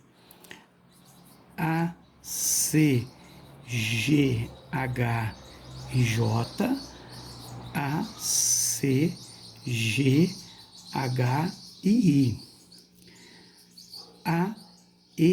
A, C, G, H e J, A, C, G, H e I, A,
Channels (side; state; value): both; identical; correlation 1.00